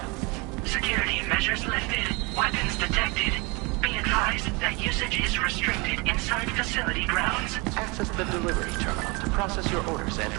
Security measures lifted. Weapons detected. Be advised that usage is restricted inside facility grounds. Access the delivery terminal to process your orders and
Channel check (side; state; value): left; quieter; 27.5 dB